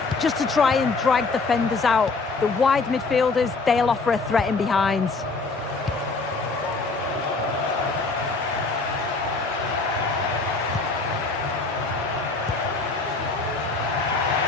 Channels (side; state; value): right; quieter; 3.9 dB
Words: just to try and drag defenders out. The wide midfielders, they'll offer a threat in behind.